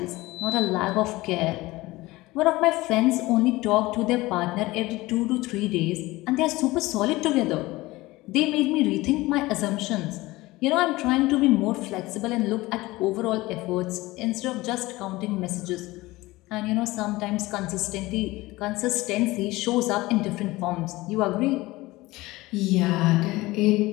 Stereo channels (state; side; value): quieter; right; 19.8 dB